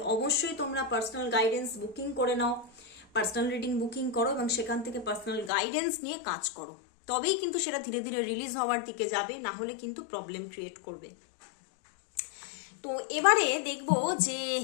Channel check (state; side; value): drops out; right; at 5.5 s